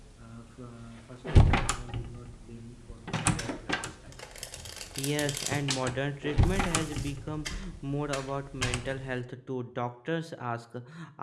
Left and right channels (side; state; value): both; identical; correlation 1.00